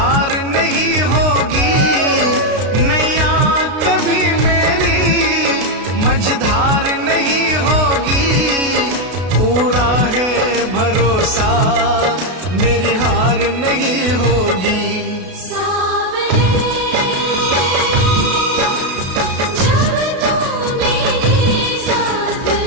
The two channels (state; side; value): late; left; 32 ms